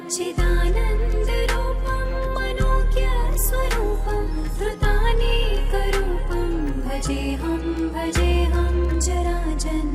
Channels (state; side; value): identical; both; correlation 1.00